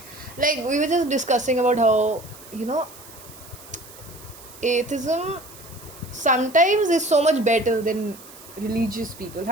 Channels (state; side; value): noise; right; hiss, 19 dB below the sound